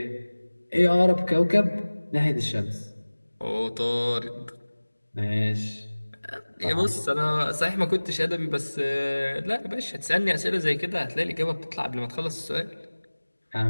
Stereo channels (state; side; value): inverted; both; correlation -1.00